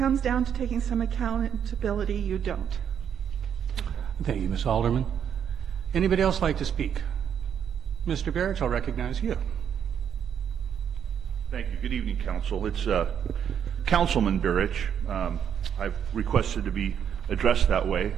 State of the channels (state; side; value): quieter; left; 8.4 dB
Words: down to taking some accountability. You don't. Thank you, Ms. Alderman. Anybody else like to speak? Mr. Barrett, I'll recognize you. Thank you. Good evening, Council. It's Councilman Burrich. I've requested to be addressed that way.